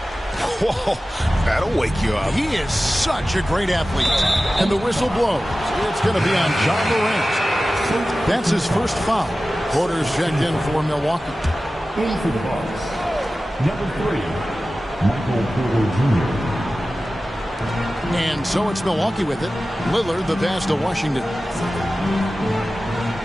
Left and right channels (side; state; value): both; normal; correlation 0.95